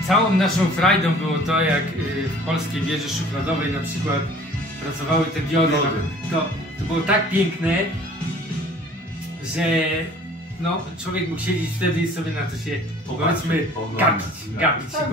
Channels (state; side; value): normal; both; correlation 0.50